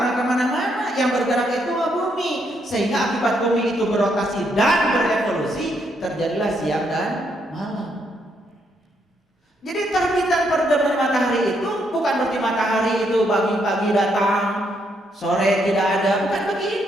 kemana-mana. Yang bergerak itu bumi. Sehingga akibat bumi itu berotasi dan berevolusi, terjadilah siang dan malam. Jadi terbit dan terbenam matahari itu bukan berarti matahari itu pagi-pagi datang, sore tidak ada, bukan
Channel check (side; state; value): both; normal; correlation 0.75